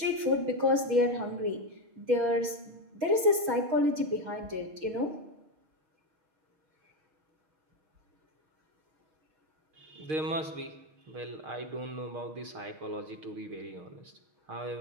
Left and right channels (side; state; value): left; late; 6.2 ms